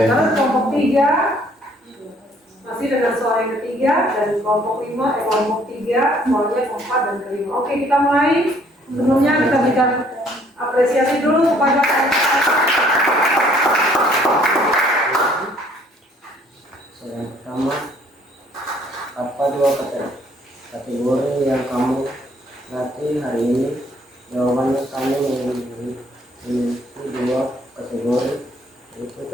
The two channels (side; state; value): both; normal; correlation 0.62